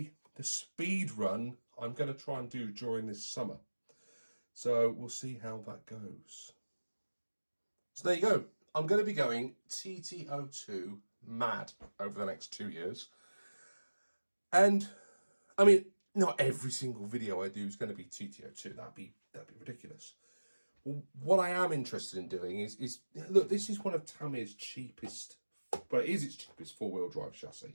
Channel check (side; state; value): both; inverted; correlation -1.00